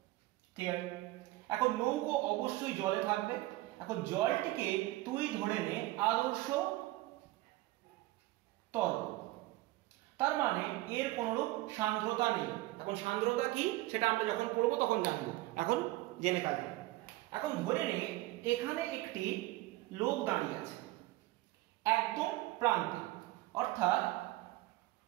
ক্লিয়ার? এখন নৌকো অবশ্যই জলে থাকবে, এখন জলটিকে তুই ধরে নে আদর্শ তরল, তার মানে এর কোনরূপ সান্দ্রতা নেই। এখন সান্দ্রতা কি সেটা আমরা যখন পড়বো তখন জানবো, এখন জেনে কাজে। এখন ধরে নে এখানে একটি লোক দাঁড়িয়ে আছে একদম প্রান্তে, অর্থাৎ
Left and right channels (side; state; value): left; quieter; 18.5 dB